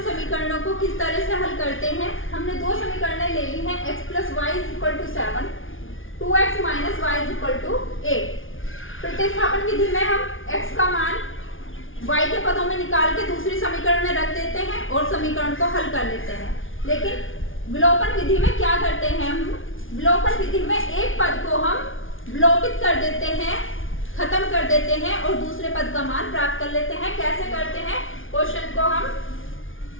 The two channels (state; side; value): late; right; 0.58 ms